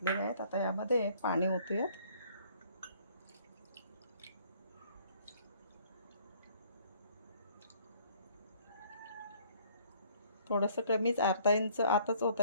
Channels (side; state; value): both; inverted; correlation -0.60